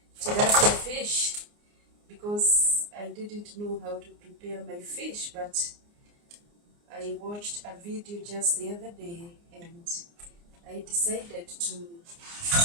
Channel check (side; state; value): left; late; 29 ms